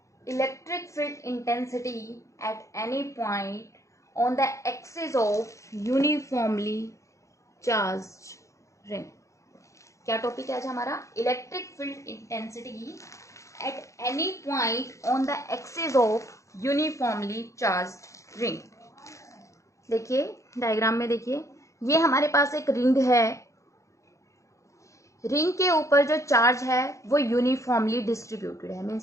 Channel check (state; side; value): late; right; 0.15 ms